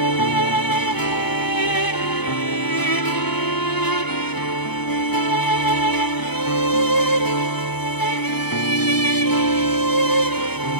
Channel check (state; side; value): late; right; 0.98 ms